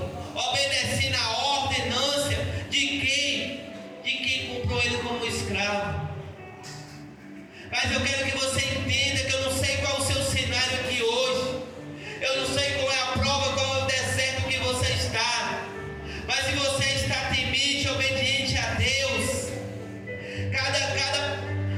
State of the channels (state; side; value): identical; both; correlation 1.00